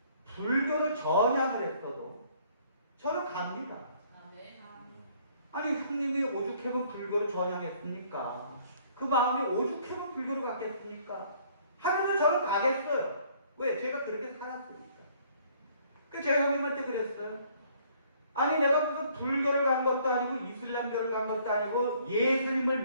불교로 전향을 했어도 저는 갑니다. 아니 형님이 오죽하면 불교로 전향했습니까? 그 마음이 오죽하면 불교로 갔겠습니까? 하면서 저는 가겠어요. 왜? 제가 그렇게 살았으니까. 그래서 제가 형님한테 그랬어요. 아니 내가 무슨 불교를 간 것도 아니고 이슬람교를 간 것도 아니고 예수님을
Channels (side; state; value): both; inverted; correlation -0.61